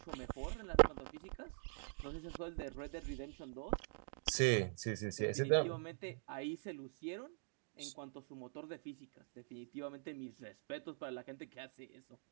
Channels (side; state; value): left; silent; digital silence